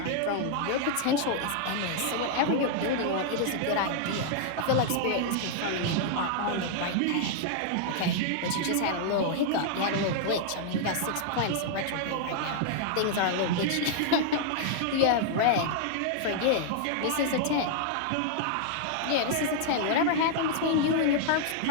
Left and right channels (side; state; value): both; different; correlation -0.01